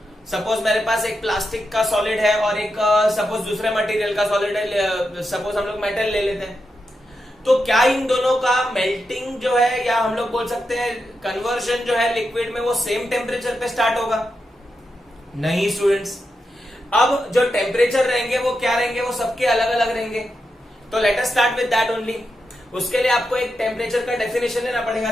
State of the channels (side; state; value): both; normal; correlation 0.87